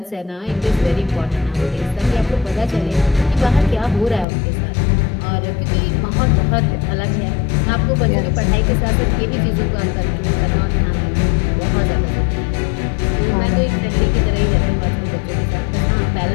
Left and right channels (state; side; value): drops out; right; at 4.2 s